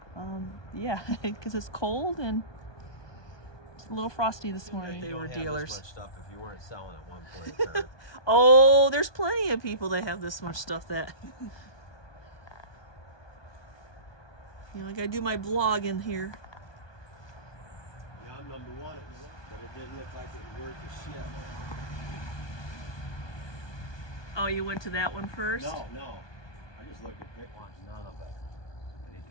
Yeah, because it's cold and it's a little frosty this morning. They were dealers. This much stuff if you weren't selling at one point in time. Oh, there's plenty of people that have this much stuff that you know, I gotta do my blog in here. Yeah, I'm number one, but it didn't look like it was worth a shit. Oh, you went to that one first? No. I just looked at Dick wants none of it. And he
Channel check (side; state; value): right; late; 1.2 ms